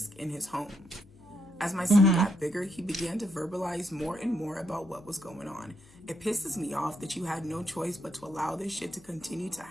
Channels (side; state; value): left; noise; hum, 26 dB below the sound